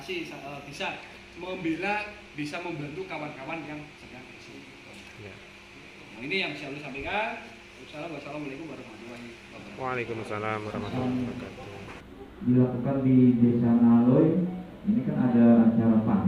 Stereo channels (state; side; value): identical; both; correlation 1.00